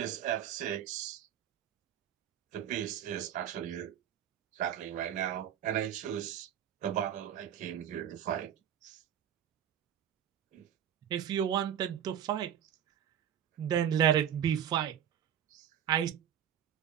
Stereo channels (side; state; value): left; quieter; 9.8 dB